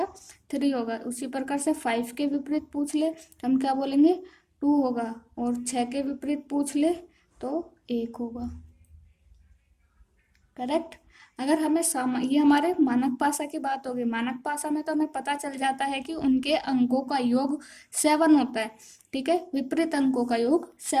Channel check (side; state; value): both; identical; correlation 1.00